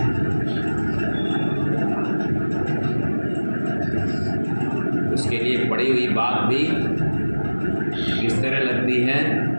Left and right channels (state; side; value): inverted; both; correlation -1.00